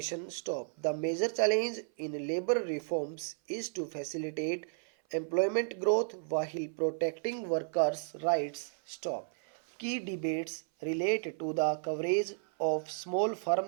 Stop. The major challenge in labor reforms is to facilitate employment growth while protecting workers' rights. Stop. Key debates relate to the coverage of small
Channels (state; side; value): silent; left; 56 dB below the other